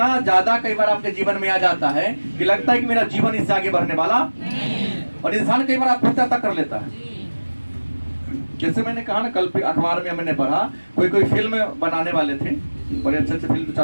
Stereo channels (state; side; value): inverted; both; correlation -1.00